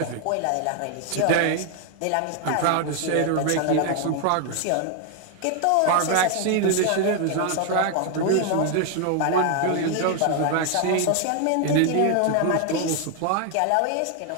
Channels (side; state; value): both; different; correlation 0.00